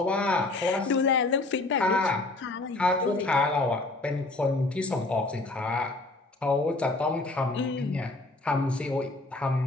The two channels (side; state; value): right; quieter; 3.1 dB